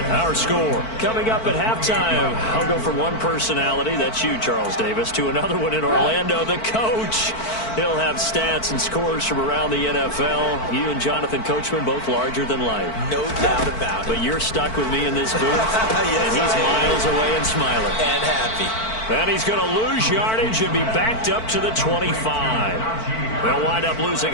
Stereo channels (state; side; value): late; right; 4.5 ms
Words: our score. Coming up at halftime, I'll go from one personality, that's you, Charles Davis, to another one in Orlando, the coach. He'll have stats and scores from around the NFL. You and Jonathan Coachman, both larger than life. No doubt about it. But you're stuck with me in this booth, yes, and he's miles away and smiling. And happy. And he's going to lose yardage and be backed up to the 25. They'll wind up